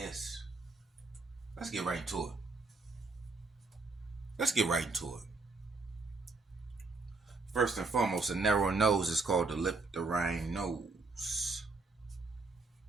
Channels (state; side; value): quieter; left; 3.7 dB